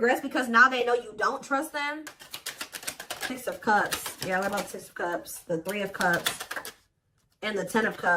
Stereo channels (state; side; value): identical; both; correlation 1.00